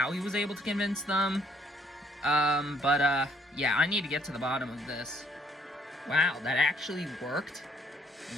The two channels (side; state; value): both; normal; correlation 0.65